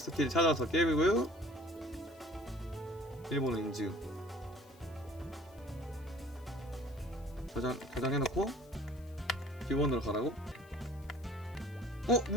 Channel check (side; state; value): left; noise; hiss, 27 dB below the sound